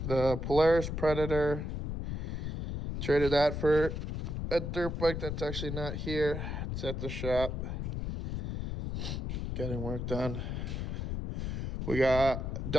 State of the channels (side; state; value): left; noise; rumble, 3 dB below the sound